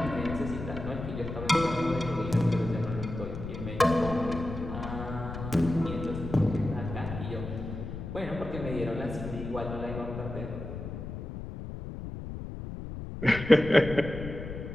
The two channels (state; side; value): noise; left; rumble, 8 dB below the sound